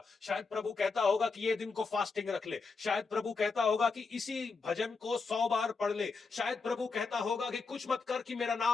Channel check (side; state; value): right; quieter; 4.5 dB